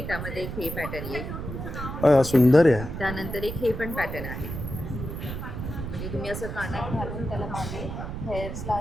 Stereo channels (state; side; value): noise; right; rumble, 6 dB below the sound